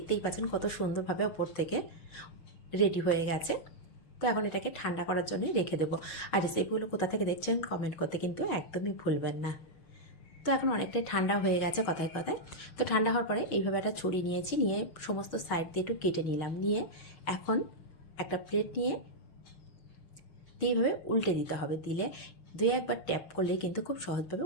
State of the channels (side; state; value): right; late; 6.2 ms